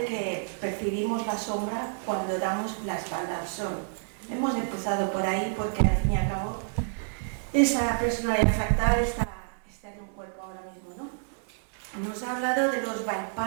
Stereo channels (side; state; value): left; silent; 59 dB below the other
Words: que percibimos la sombra cuando damos la espalda al sol. Hemos empezado por ahí porque al fin y al cabo esa personalidad fractal está en un cuerpo ahora mismo, ¿no? Nos ha hablado de los